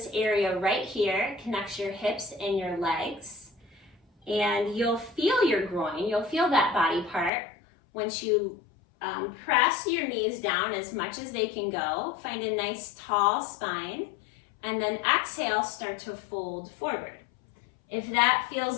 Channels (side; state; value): right; drops out; at 7.3 s